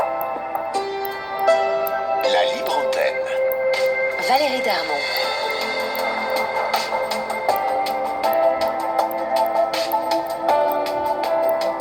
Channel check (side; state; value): left; noise; hum, 28 dB below the sound